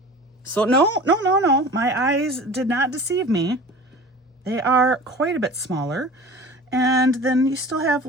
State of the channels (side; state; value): both; normal; correlation 0.40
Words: So no. My eyes did not deceive me. They are quite a bit smaller. And then you still have